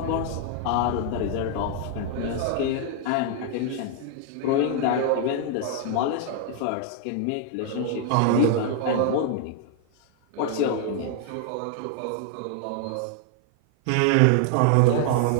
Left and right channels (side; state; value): both; different; correlation 0.00